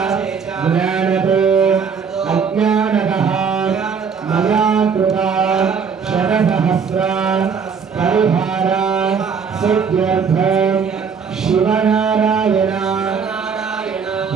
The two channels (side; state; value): left; quieter; 6.2 dB